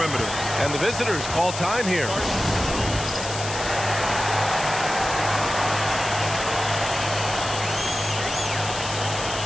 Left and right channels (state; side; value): noise; left; hiss, 8 dB below the sound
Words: And the visitors call time here.